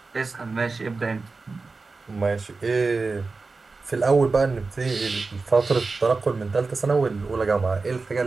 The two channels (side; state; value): left; quieter; 4.0 dB